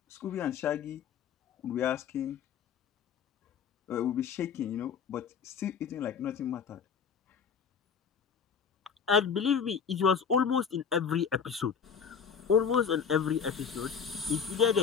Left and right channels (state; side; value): quieter; right; 6.7 dB